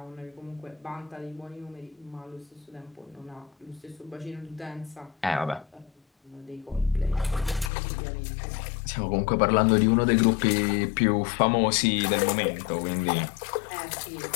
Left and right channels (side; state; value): right; drops out; at 7.7 s